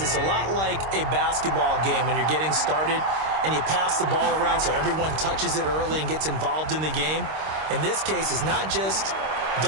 a lot like a basketball game when you're getting started and you pass the ball around so everyone touches it early and gets involved in the game. In this case, it's not just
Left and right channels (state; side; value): late; left; 26 ms